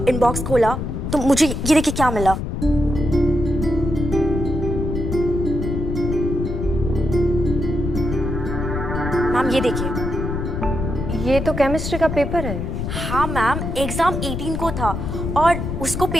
इनबॉक्स खोला तो मुझे ये देखिए क्या मिला। मैम, ये देखिए। ये तो केमिस्ट्री का पेपर है। हाँ मैम, एग्जाम 18 को था और उसको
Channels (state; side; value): noise; left; rumble, 3 dB below the sound